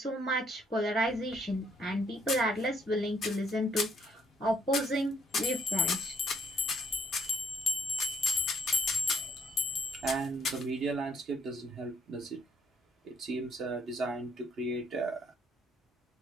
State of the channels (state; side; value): normal; both; correlation 0.68